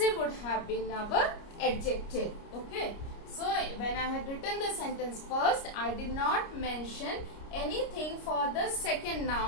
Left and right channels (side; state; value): right; late; 29 ms